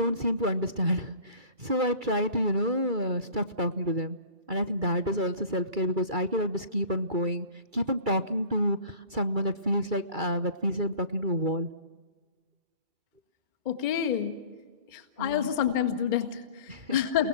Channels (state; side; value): late; left; 2.3 ms